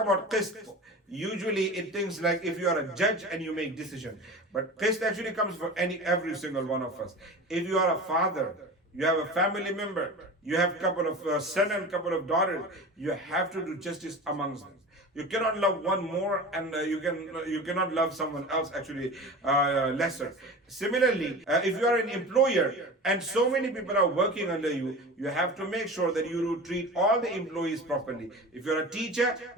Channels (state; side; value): normal; both; correlation 0.33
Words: qist, usually it thinks like if you are a judge and you make decision. But qist actually comes for every single one of us. If you are a father, you have a family member, you have a couple of sons and a couple of daughters, you have to do justice amongst them. You cannot love one more, and you cannot love someone else actually lesser. Similarly, if you are an employer and so many people are working under you, you have to make sure that you do treat all the employees properly. If you're a teacher,